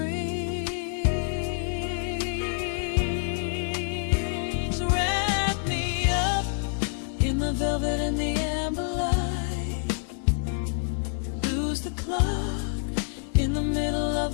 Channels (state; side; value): silent; right; 60 dB below the other